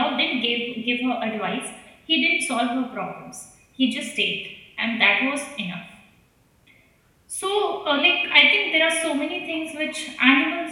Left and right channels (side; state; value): both; identical; correlation 1.00